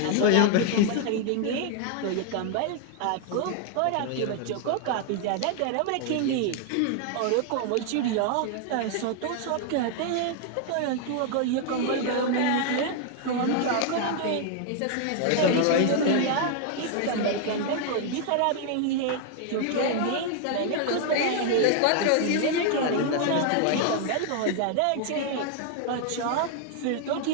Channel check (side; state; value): both; different; correlation 0.00